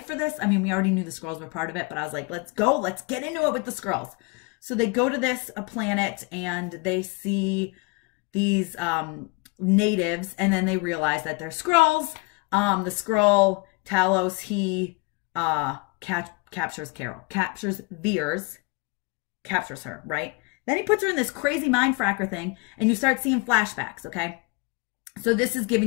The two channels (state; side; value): quieter; right; 28.4 dB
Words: for this. I mean, we already knew the Skrulls were part of it, but I was like, let's go. Let's get into it with the Skrulls. So they go to this planet and they see these natives, and then they realize that they're Skrulls. The Skrull, Talos, he captures Carol, captures Veers, captures her, right? Then he puts her in this crazy mind fracker thing, and you start seeing flashbacks, okay? So this is